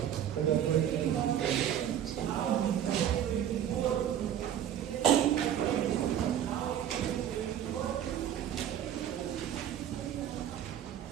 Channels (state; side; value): quieter; left; 10.2 dB